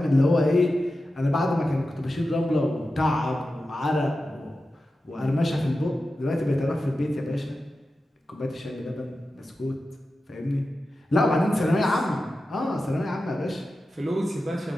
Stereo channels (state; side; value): normal; both; correlation 0.92